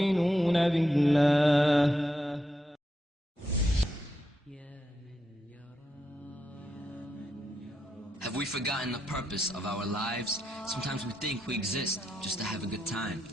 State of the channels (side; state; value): both; normal; correlation 0.83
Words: بالله. Have we forgotten the purpose of our lives? Sometimes we think we exist just to have a good time.